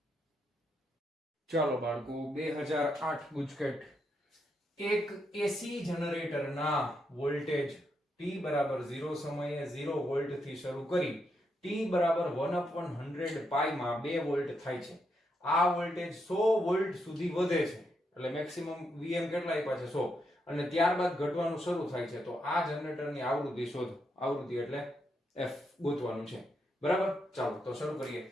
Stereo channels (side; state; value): both; normal; correlation 0.80